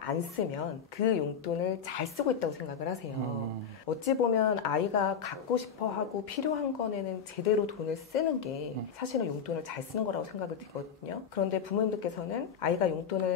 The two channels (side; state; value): right; quieter; 7.0 dB